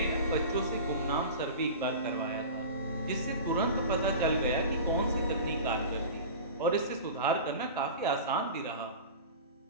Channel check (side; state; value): both; inverted; correlation -0.33